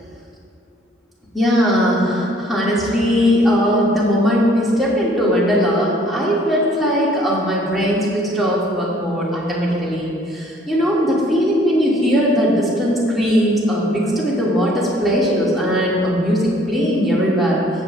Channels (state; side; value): normal; both; correlation 0.59